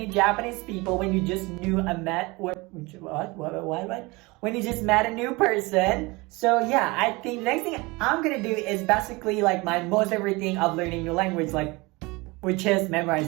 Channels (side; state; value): left; quieter; 24.2 dB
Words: Japanese people when you just when you just met a new person. So yeah, I think the next thing I'm gonna do is basically like my most favorite thing of learning new language, which is